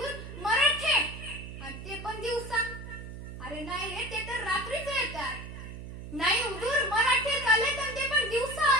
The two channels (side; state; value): right; noise; hum, 11 dB below the sound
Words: मराठे. आणि ते पण दिवसा? अरे नाही रे, ते तर रात्रीच येतात. नाही हुजूर, मराठे आले तर ते पण दिवसा